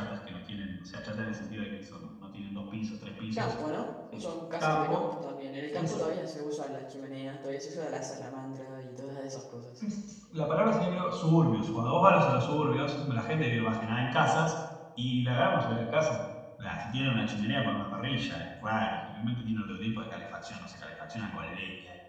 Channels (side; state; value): both; identical; correlation 1.00